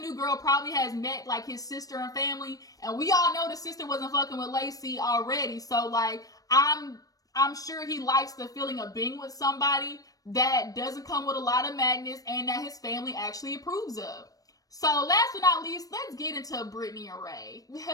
girl probably has met like his sister and family. And we all know the sister wasn't fucking with Lacey already. So like, I'm sure he likes the feeling of being with somebody that doesn't come with a lot of madness and that his family actually approves of. So last but not least, let's get into Brittany and Ray.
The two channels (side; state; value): right; late; 0.18 ms